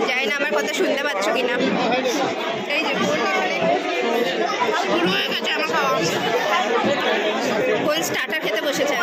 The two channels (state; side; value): identical; both; correlation 1.00